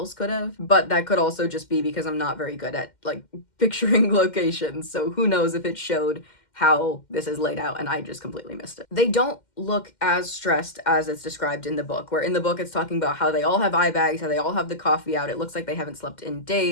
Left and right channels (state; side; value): late; right; 2.1 ms